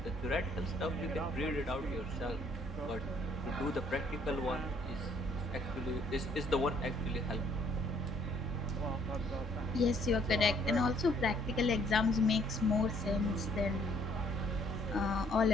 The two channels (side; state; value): both; normal; correlation 0.64